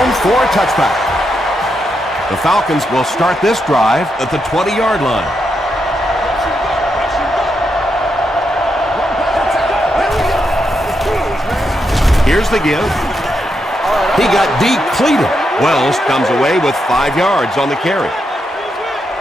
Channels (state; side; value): normal; both; correlation 0.83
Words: for a touchback. The Falcons will start this drive at the 20-yard line. Here's the give. He got depleted. Wells comes away with 5 yards on the carry.